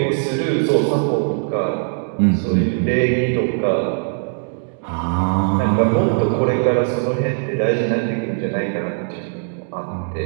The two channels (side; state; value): left; silent; 59 dB below the other